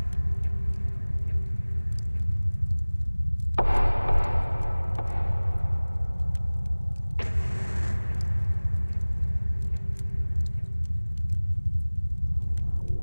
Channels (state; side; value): inverted; both; correlation -1.00